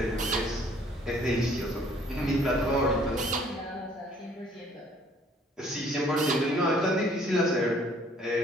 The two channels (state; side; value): normal; both; correlation 0.59